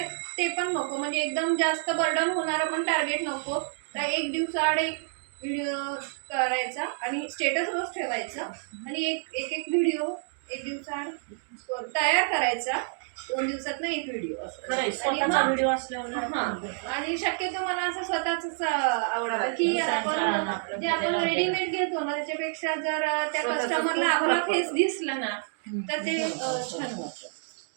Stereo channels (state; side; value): silent; left; 59 dB below the other